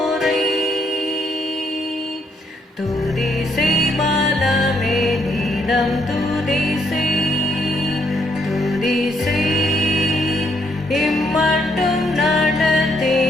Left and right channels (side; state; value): both; normal; correlation 0.73